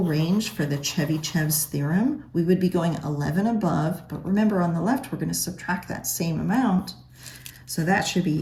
range for the Chebyshev's theorem, we would be going 11 above. But remember, on the left, we're going to subtract that same amount. So that should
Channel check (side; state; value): both; identical; correlation 1.00